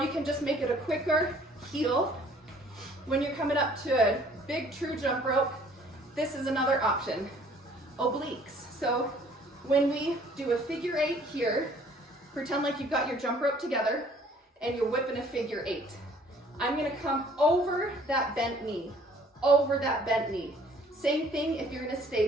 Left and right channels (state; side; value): normal; both; correlation 0.57